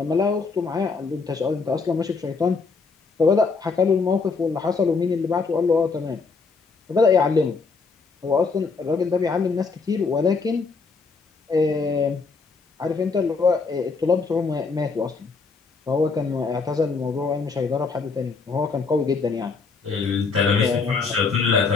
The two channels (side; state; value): right; quieter; 4.6 dB